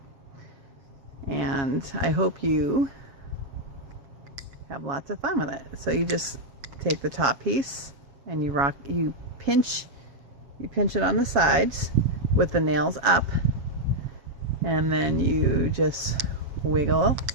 And I hope you have lots of fun with it. So you just take the top piece and you pinch it on the sides with the nails up, and then you just wiggle.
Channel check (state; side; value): late; left; 7.2 ms